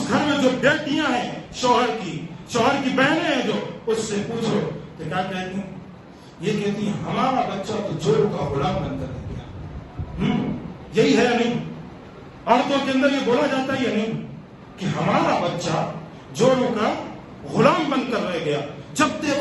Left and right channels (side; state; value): both; identical; correlation 1.00